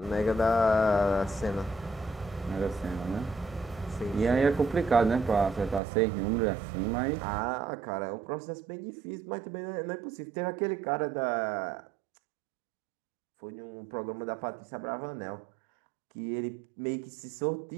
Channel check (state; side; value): drops out; left; at 5.8 s